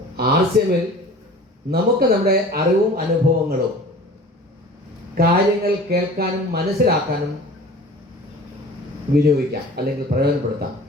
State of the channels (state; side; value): normal; both; correlation 0.42